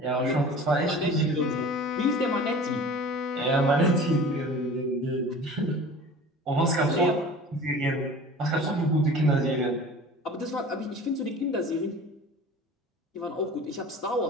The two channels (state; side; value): normal; both; correlation 0.41